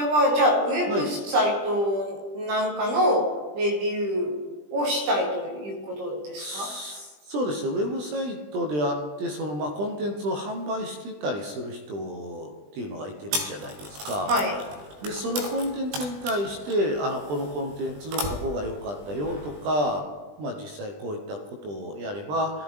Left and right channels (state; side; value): late; left; 20 ms